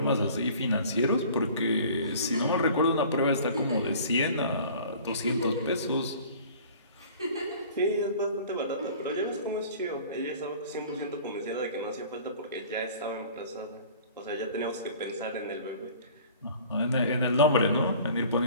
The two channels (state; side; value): inverted; both; correlation -0.47